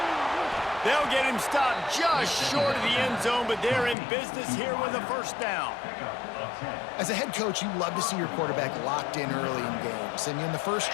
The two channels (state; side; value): drops out; right; at 4.0 s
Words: They'll get him stopped just short of the end zone, but they're in business here with a first down. As a head coach, you love to see your quarterback locked in early in games. And in the first